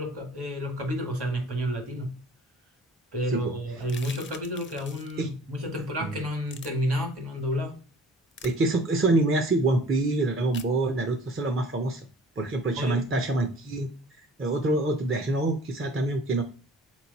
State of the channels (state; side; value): normal; both; correlation 0.50